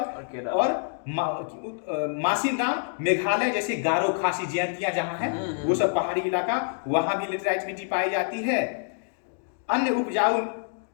और मासिनराम मेघालय जैसे गारो खासी जयंतियां जहां है वो सब पहाड़ी इलाका, वहां भी लेटराइट मिट्टी पाई जाती है। अन्य उपजाऊ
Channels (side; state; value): right; silent; digital silence